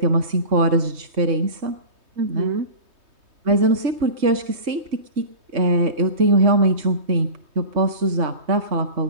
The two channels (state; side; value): late; left; 3.2 ms